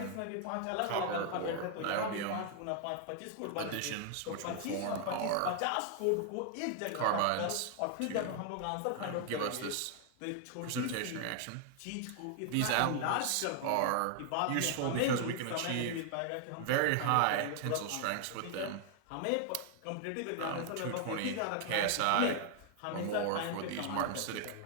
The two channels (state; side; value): different; both; correlation 0.00